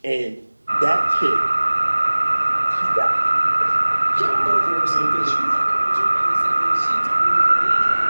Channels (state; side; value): inverted; both; correlation -1.00